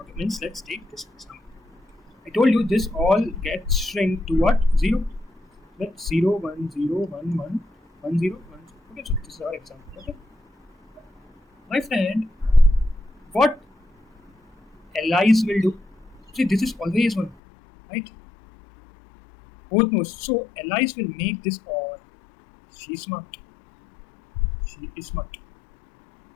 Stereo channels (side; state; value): right; drops out; at 17.4 s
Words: means let's take this example. I told you this all gets shrink to what? 0. Let's 0 1 0 1 1 1 0 1 0. Okay, so this is our example. Okay. My friend, what Alice will do? See, this is always 1, right? Both knows. So Alice will make this or. She's smart. She is smart.